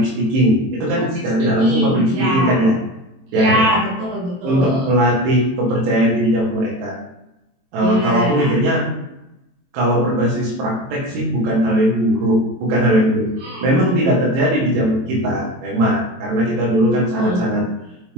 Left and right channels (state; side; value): late; left; 23 ms